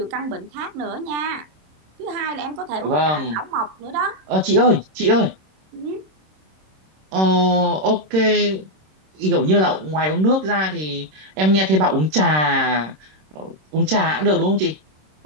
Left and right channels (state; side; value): late; left; 26 ms